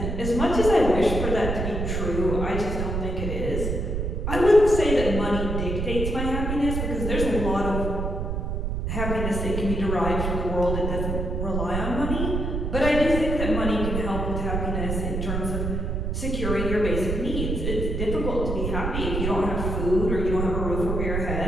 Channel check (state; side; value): noise; right; rumble, 2 dB below the sound